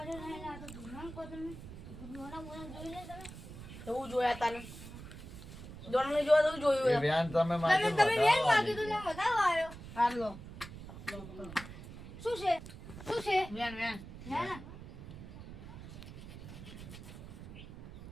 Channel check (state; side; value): noise; right; rumble, 13 dB below the sound